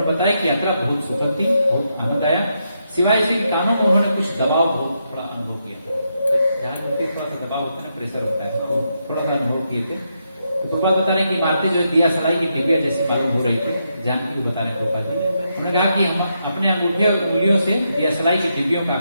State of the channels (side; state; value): both; inverted; correlation -0.82